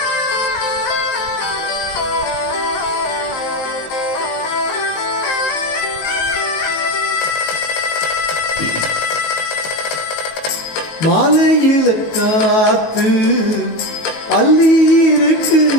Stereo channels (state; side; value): late; right; 19 ms